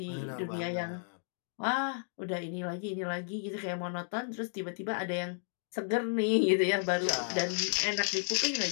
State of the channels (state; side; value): silent; right; digital silence